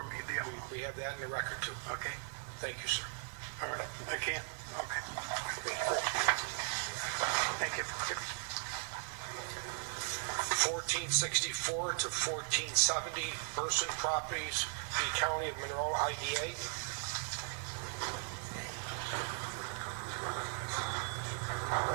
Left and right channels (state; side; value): silent; left; 52 dB below the other